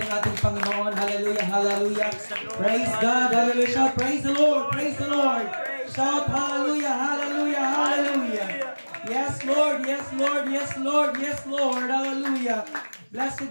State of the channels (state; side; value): inverted; both; correlation -1.00